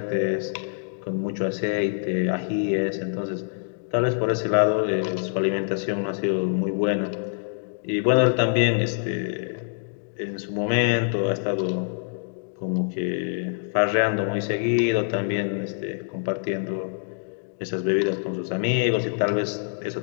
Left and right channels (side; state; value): right; silent; digital silence